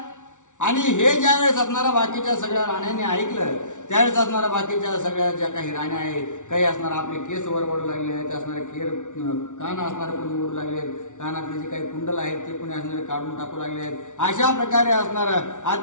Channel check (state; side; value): late; right; 0.86 ms